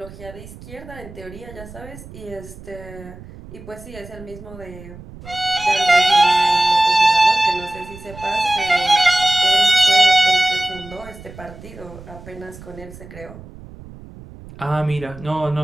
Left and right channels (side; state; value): right; noise; rumble, 17 dB below the sound